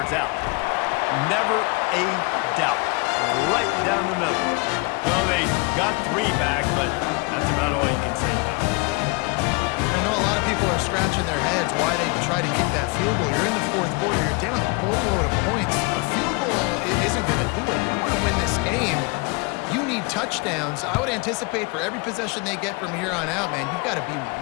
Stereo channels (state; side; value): quieter; right; 28.9 dB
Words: out. Never a doubt. Right down the middle. Well, they got three back, but that's about all you can say about it. I know a lot of people are scratching their heads why they try to kick that field goal. You're in the fourth quarter. You're down a boatload of points. A field goal isn't going to do it. You want to win this game. You need touchdowns. I would anticipate for every possession they get from here on out, man, you've got to